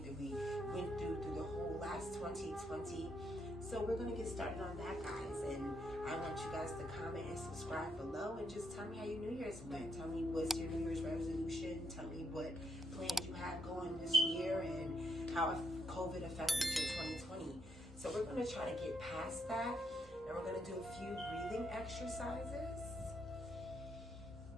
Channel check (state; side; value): normal; both; correlation 0.77